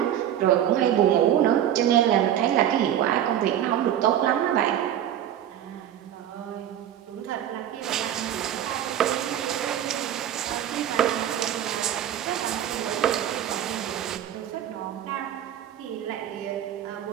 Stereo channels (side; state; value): left; quieter; 10.8 dB